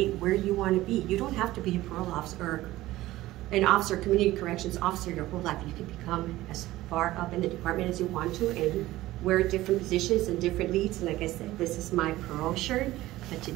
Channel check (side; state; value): left; quieter; 16.6 dB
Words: where you want to be. You don't have to be a parole officer or an officer, community corrections officer your whole life. You can become as far up in the department as you want to and wear different positions and different leads. And like I said, this is my parole shirt, but